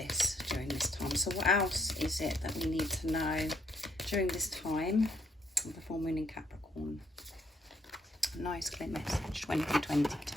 during this time. So what else is it that we need to know during this time of the full moon in Capricorn? Nice clear message,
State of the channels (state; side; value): normal; both; correlation 0.70